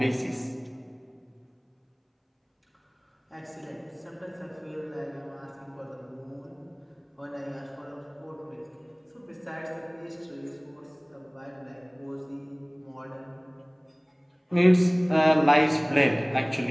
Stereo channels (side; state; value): both; identical; correlation 1.00